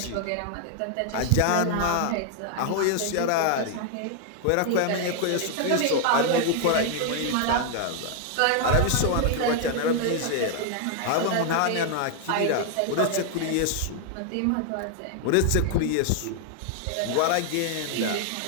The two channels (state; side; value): different; both; correlation 0.00